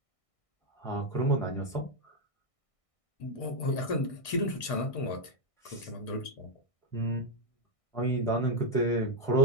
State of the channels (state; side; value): late; right; 1.6 ms